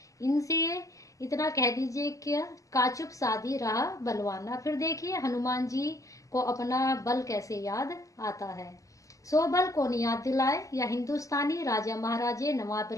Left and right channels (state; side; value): late; right; 0.16 ms